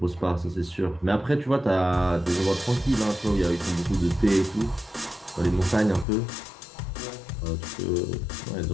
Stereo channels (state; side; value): drops out; right; at 6.1 s